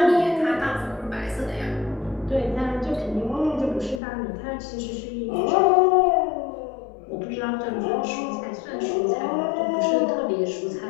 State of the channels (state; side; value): drops out; right; at 4.0 s